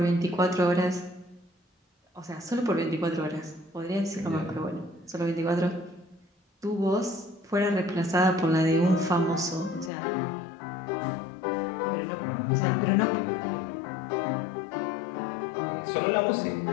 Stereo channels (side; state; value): right; drops out; at 9.9 s